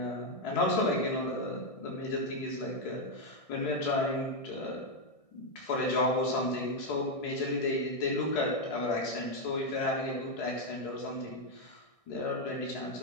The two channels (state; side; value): late; right; 1.6 ms